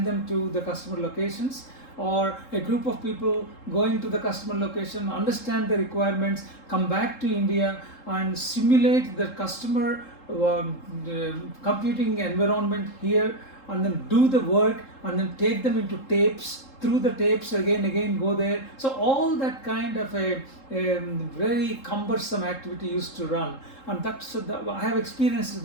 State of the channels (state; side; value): late; right; 3.7 ms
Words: them to the customer locations, or a group of people going to the customer location, understand the requirements, come back to India and simulate the customer computing environment here, and then do the work and then take them into tapes, through the tapes again go there. So all that kind of a very cumbersome activity used to run, and I have experienced